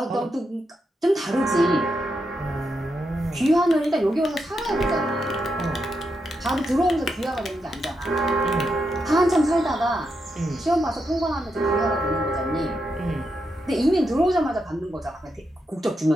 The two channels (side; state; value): both; normal; correlation 0.84